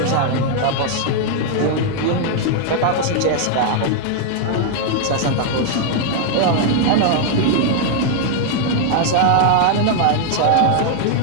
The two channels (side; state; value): both; different; correlation 0.00